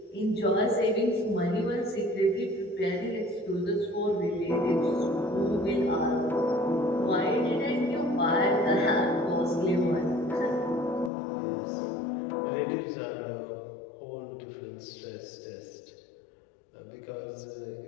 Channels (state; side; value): drops out; right; at 11.1 s